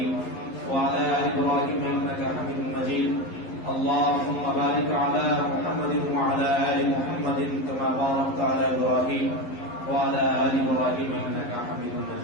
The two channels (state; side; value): late; right; 11 ms